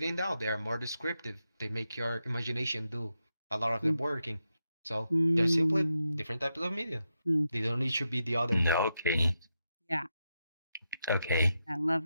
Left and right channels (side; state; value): both; inverted; correlation -0.85